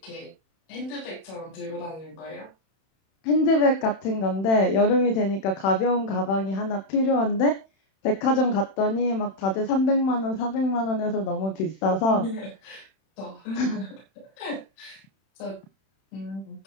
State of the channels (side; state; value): right; late; 31 ms